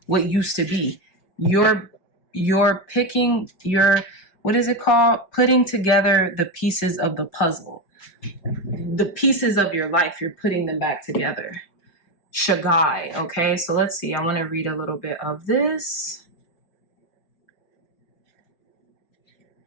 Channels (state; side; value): late; right; 5.1 ms